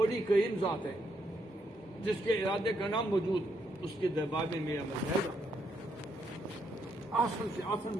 کریم ذات ہے جس کے ارادے کا نام موجود، اس کے دربار میں میرا عمل جائے گا۔ آسن سے آسن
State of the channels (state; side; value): normal; both; correlation 0.76